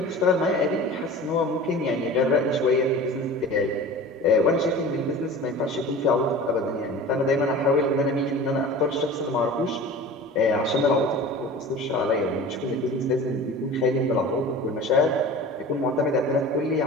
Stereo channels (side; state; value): both; normal; correlation 0.38